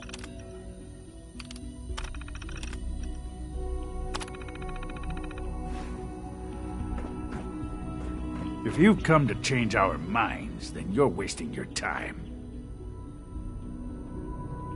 If you've come to change our minds, then you're wasting your time.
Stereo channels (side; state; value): both; identical; correlation 1.00